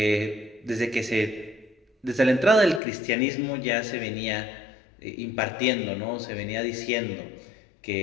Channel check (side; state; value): right; drops out; at 2.8 s